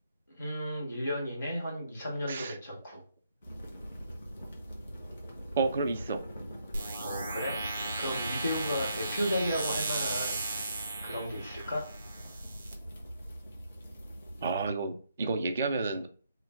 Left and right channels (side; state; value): both; inverted; correlation -0.75